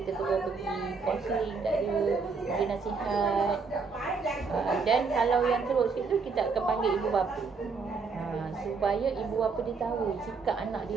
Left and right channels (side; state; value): left; quieter; 4.8 dB